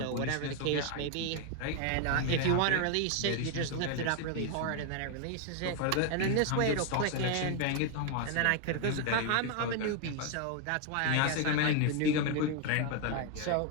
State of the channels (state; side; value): different; both; correlation 0.00